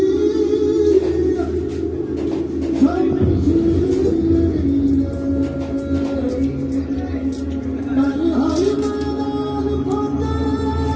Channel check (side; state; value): both; identical; correlation 1.00